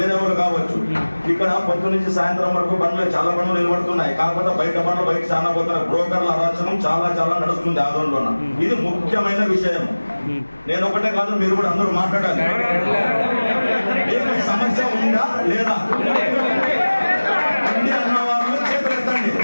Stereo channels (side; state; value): both; inverted; correlation -1.00